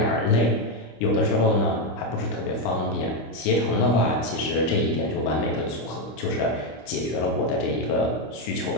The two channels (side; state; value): right; late; 26 ms